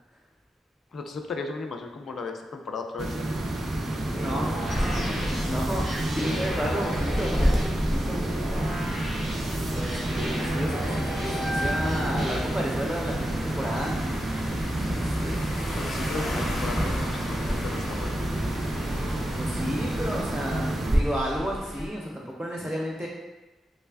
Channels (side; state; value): both; normal; correlation 0.89